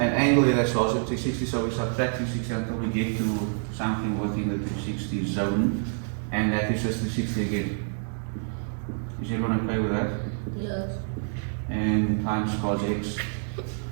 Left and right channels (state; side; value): silent; left; 60 dB below the other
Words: here that's also 360, so we subtract 360 until we get to something within the 360 zone, and that is just 360 again. Is everyone okay with that? Yes. And times cos x.